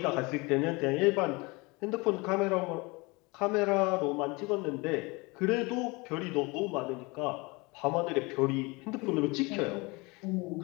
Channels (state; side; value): quieter; right; 25.9 dB